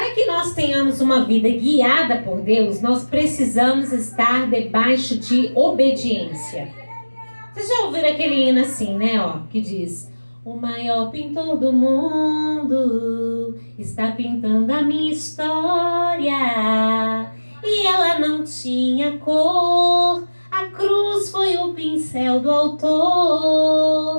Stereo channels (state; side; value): inverted; both; correlation -1.00